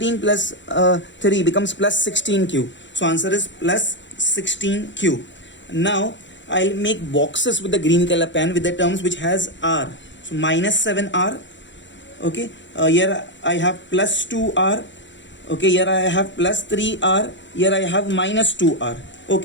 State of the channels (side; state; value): right; late; 0.54 ms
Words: plus 3 becomes plus 16q. So answer is plus 16q. Now I'll make boxes with the green color pen with the terms which has r. So minus 7r. Okay, here I have plus 2r. Okay, here I have plus 3r. Here I have minus 2r.